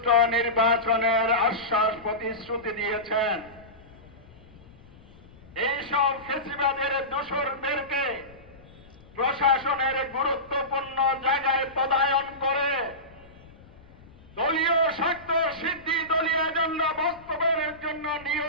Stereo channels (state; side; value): noise; left; rumble, 23 dB below the sound